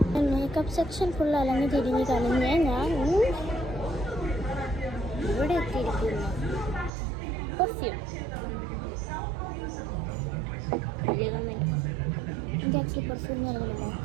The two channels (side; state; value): left; drops out; at 6.9 s